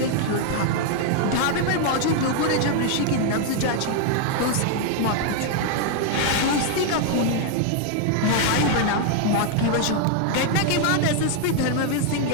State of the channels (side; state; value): both; different; correlation 0.00